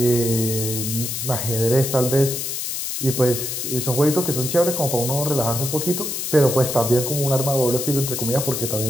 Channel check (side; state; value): left; noise; hiss, 3 dB below the sound